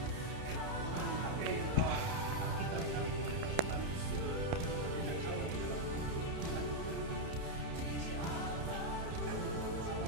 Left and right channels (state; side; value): late; left; 31 ms